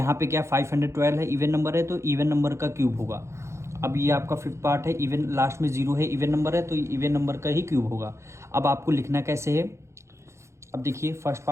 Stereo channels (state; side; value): late; left; 0.14 ms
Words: पे क्या 512 है, इवन नंबर है तो इवन नंबर का क्यूब होगा। अब ये आपका फिफ्थ पार्ट है, इवन लास्ट में 0 है, इवन नंबर है तो इवन नंबर का ही क्यूब होगा। अब आपको लिखना कैसे है, अब देखिए फर्स्ट